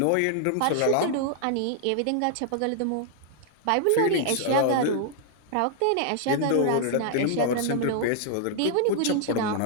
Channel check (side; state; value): both; different; correlation -0.01